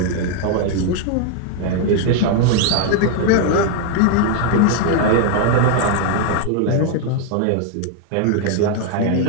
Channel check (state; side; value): different; both; correlation 0.00